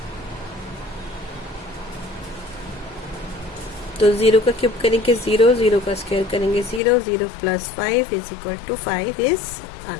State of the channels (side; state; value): right; drops out; at 6.8 s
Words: तो 0 का क्यूब करेंगे 0, 0 का स्क्वायर करेंगे 0, 0 plus 5 is equal to 5 is